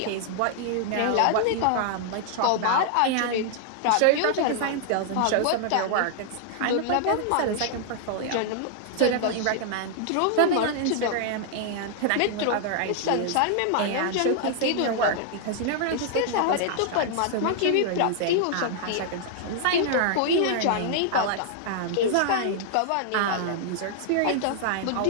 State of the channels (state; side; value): different; both; correlation -0.01